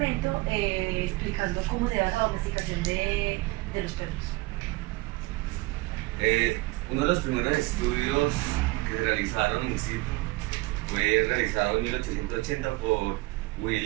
explicando cómo se da la domesticación de los perros. Uno de los primeros estudios que se realizaron in situ fue realizado en 1880 por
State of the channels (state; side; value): quieter; left; 21.5 dB